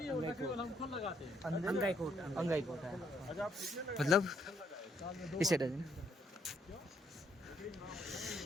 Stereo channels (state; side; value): normal; both; correlation 0.71